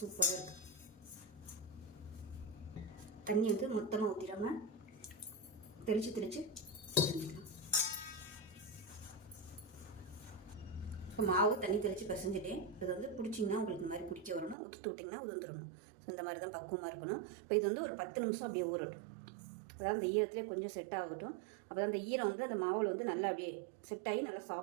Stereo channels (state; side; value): drops out; left; at 14.6 s